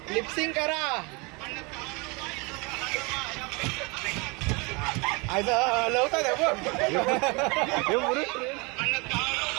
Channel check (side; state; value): left; quieter; 28.4 dB